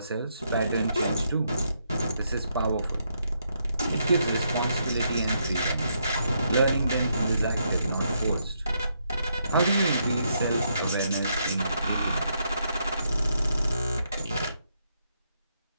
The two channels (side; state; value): both; inverted; correlation -0.77